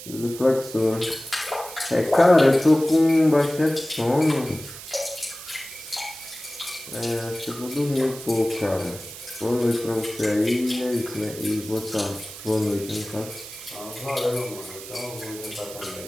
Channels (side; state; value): right; noise; hiss, 13 dB below the sound